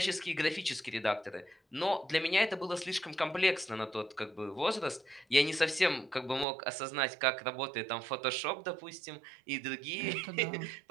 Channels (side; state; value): left; drops out; at 6.5 s